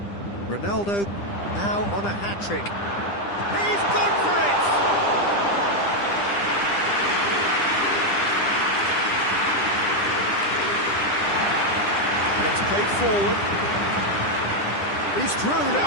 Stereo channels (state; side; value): late; right; 10 ms